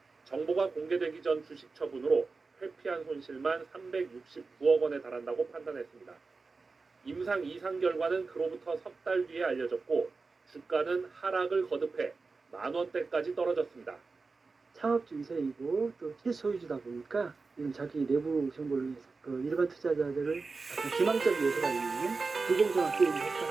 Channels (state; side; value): quieter; left; 4.2 dB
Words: 정보가 공개되기 전 주식 처분으로 회피한 손실만 369억 원에 달한다고 판단했습니다. 임상 이상 결과는 그로부터 석 달 뒤에 알려졌고 주가는 하락을 거듭해 만원대까지 떨어졌습니다. 창업주 2세이고 또 실소유주다 보니까 이런 자기 내부 정보를 위해서 그 일반 투자자들을 약간 기망적 요소가 있는 불공정한 게임을